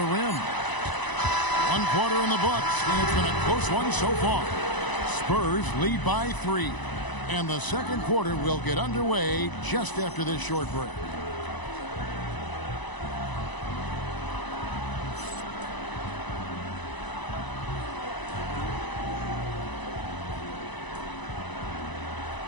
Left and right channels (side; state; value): right; late; 1.0 ms